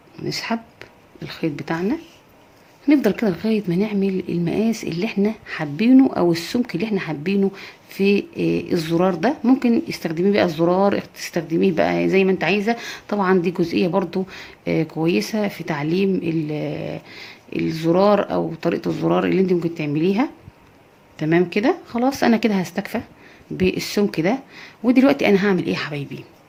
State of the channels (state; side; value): identical; both; correlation 1.00